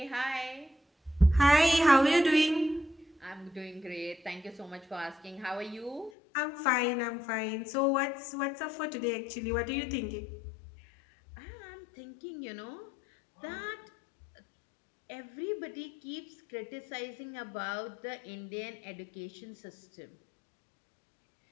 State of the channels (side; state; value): right; drops out; at 6.1 s